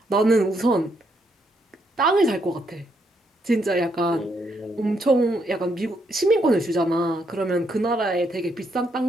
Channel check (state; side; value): normal; both; correlation 0.76